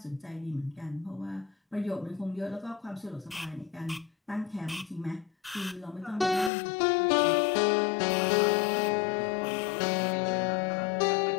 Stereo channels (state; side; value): drops out; right; at 6.5 s